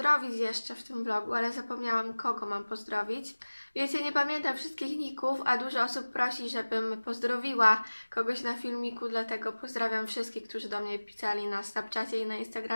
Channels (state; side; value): inverted; both; correlation -1.00